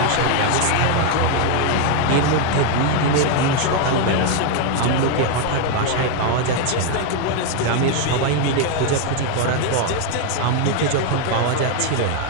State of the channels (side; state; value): both; different; correlation 0.01